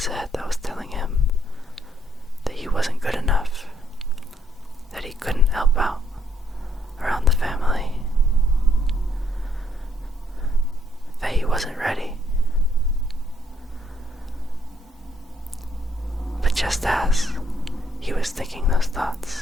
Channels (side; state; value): both; normal; correlation 0.70